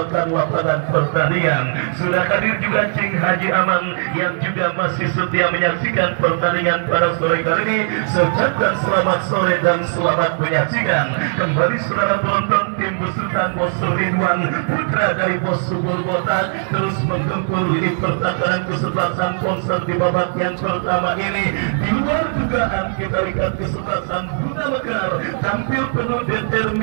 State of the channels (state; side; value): silent; left; digital silence